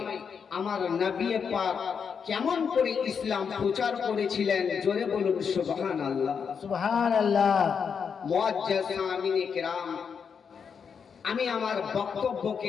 আমার নবী পাক কেমন করে ইসলাম প্রচার করেছিলেন। জোরে বলুন সুবহানাল্লাহ। সুবহানাল্লাহ। মুআজ্জাজ সামিনে কিরাম, আমি আমার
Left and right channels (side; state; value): right; quieter; 6.5 dB